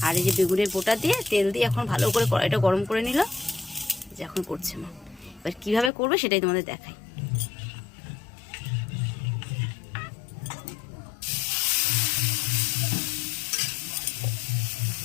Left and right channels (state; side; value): drops out; right; at 5.9 s